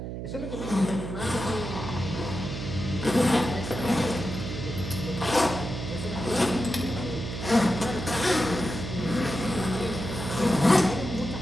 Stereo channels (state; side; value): noise; right; hum, 6 dB below the sound